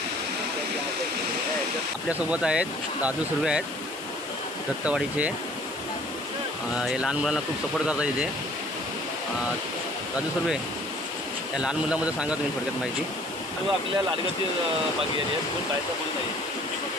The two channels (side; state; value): left; noise; hiss, 16 dB below the sound